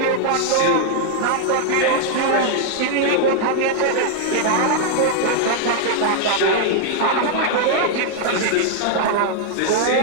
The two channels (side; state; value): both; different; correlation -0.01